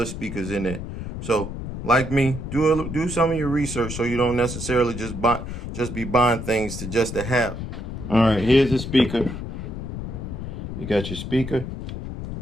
speakers in there. So, like me, do some of your research so you don't necessarily just be buying things just to have. All right, here's the speaker. You got your speaker.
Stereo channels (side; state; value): left; noise; rumble, 7 dB below the sound